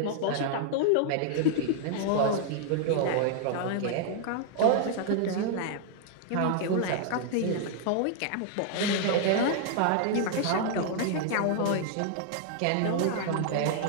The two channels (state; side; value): different; both; correlation -0.01